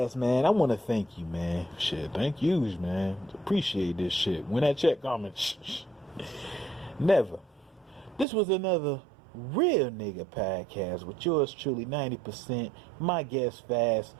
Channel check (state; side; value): drops out; left; at 8.2 s